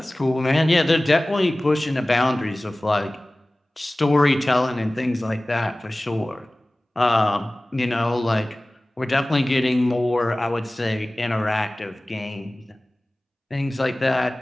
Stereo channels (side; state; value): both; normal; correlation 0.98